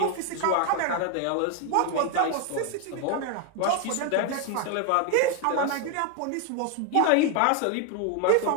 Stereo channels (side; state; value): both; different; correlation 0.01